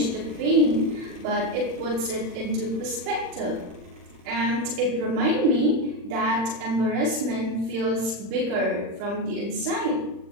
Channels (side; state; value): left; late; 40 ms